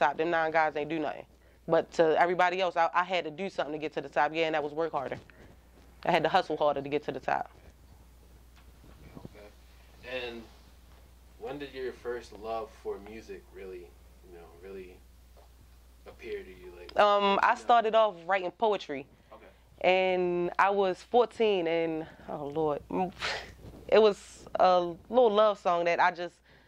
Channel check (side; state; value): both; identical; correlation 1.00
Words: Them 9 guys ain't do nothing. But to everybody else, I had to do something to get to the top. Yeah, and that was work harder. I had to hustle harder to get to the top. And when did your first love for music really, really appear to you? Like, I started off writing poetry. Okay. And I was 14, and oh Lord, it was a little love song that I just